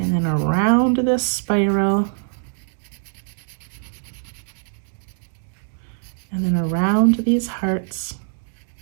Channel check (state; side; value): silent; left; digital silence